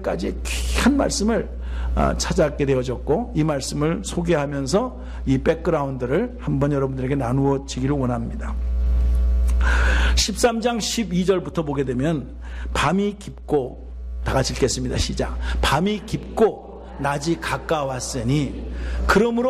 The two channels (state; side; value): identical; both; correlation 1.00